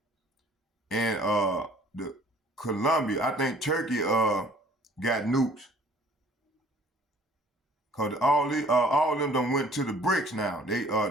and Colombia. I think Turkey got nukes. Cause all of them done went to the BRICS now. They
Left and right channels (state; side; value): normal; both; correlation 0.54